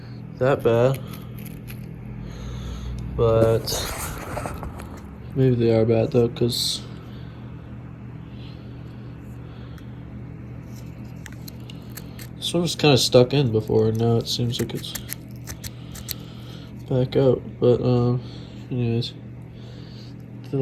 that bad. But maybe they are bad though, because this one was kind of stuck in before, and now it seems like it's back out. But anyways, they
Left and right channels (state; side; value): identical; both; correlation 1.00